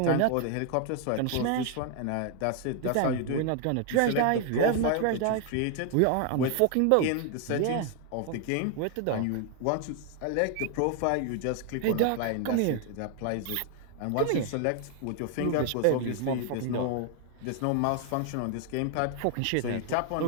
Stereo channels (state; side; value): different; both; correlation 0.00